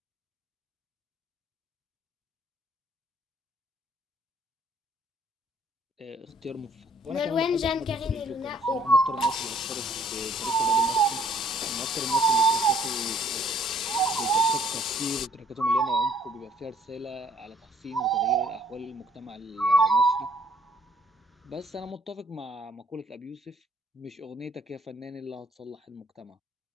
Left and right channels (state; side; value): normal; both; correlation 0.62